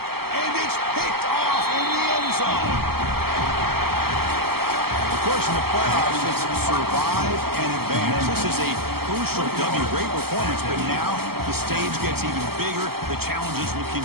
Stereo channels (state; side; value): late; left; 0.95 ms